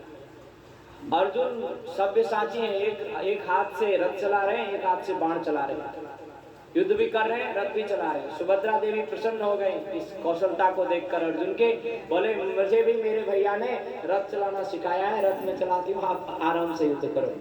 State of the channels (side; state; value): both; identical; correlation 1.00